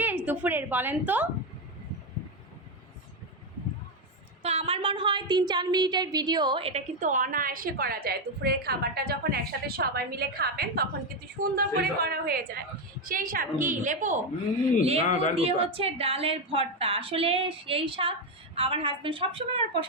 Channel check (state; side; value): normal; both; correlation 0.07